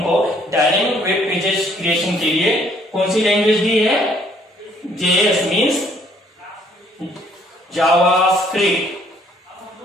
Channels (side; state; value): both; normal; correlation 0.64